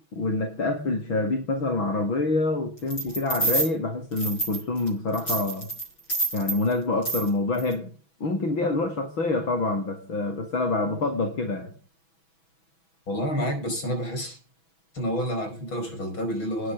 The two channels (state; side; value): late; right; 6.1 ms